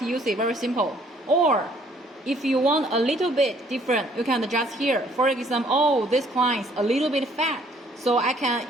use it, very simple. Or if you want a little bit different, you can adjust here. For example, oh, this client's a little bit fat, so I can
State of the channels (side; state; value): both; normal; correlation 0.62